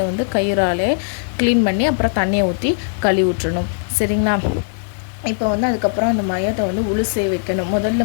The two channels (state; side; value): silent; right; digital silence